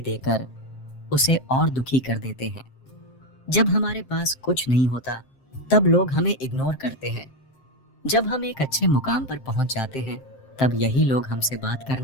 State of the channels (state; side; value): late; right; 7.6 ms